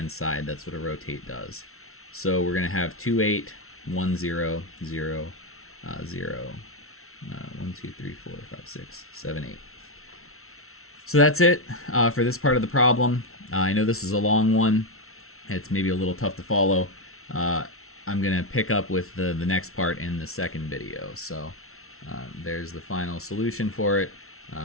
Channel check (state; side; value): late; right; 0.62 ms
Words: side. That's what a rotate does. So we're going to have 2, 8, 1, 0, 0, 0, 1, 2, 3, 4, 5, 6, 7, 8. So that's it for this part of the problem. I know this is a long one. It's maybe a little tough to follow. I'm going to pick up with the next part in the second video. So there's the final solution for it.